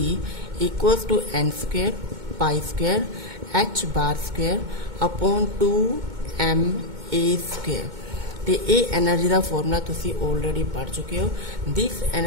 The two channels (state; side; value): late; left; 2.2 ms